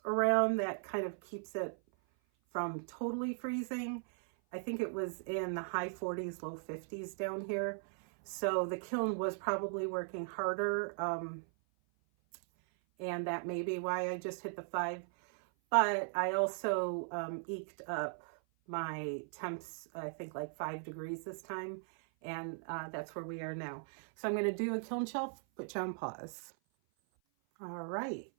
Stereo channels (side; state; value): left; silent; 52 dB below the other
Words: around that kind of keeps it from totally freezing, I think it was in the high 40s, low 50s down here. So the kiln was probably working harder. And that may be why I just hit the 5. But I also eked up my temps, I think like 5 degrees this time. And that's where we are now. So I'm going to do a kiln shelf, put you on pause. All right,